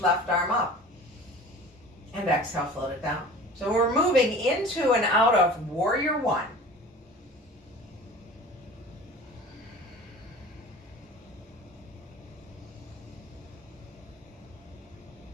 left arm up. And exhale, float it down. So we're moving into and out of Warrior One.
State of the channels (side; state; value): both; normal; correlation 0.40